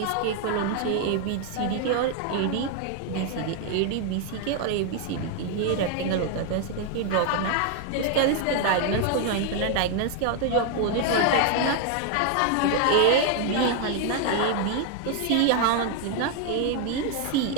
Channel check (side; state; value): both; different; correlation 0.00